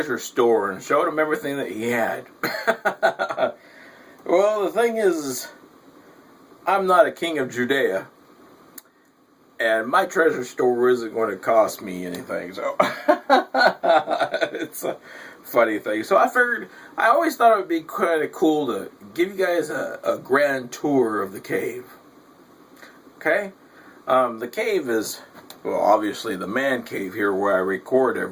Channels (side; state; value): both; identical; correlation 1.00